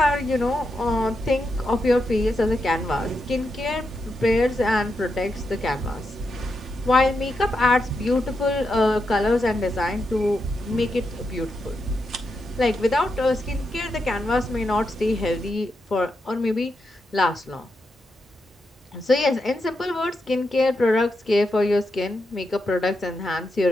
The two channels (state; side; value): normal; both; correlation 0.85